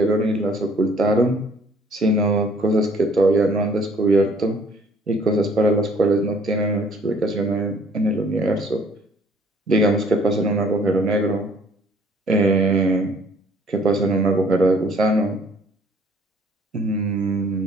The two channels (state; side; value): normal; both; correlation 0.58